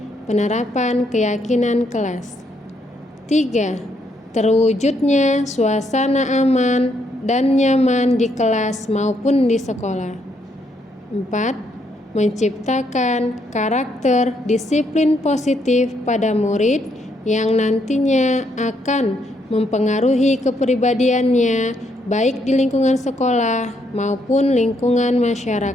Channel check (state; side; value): normal; both; correlation 0.74